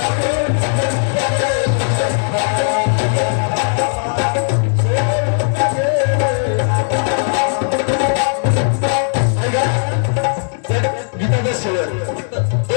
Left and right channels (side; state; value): right; silent; digital silence